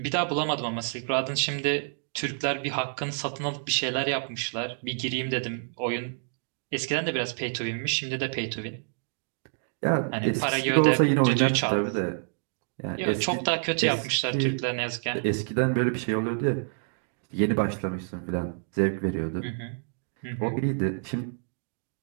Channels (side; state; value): left; silent; digital silence